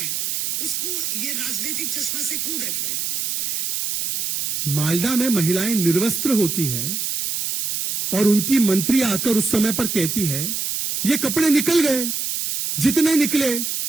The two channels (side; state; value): right; noise; hiss, 1 dB below the sound